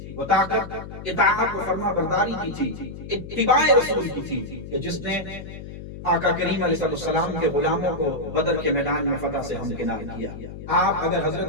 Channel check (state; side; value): noise; left; hum, 12 dB below the sound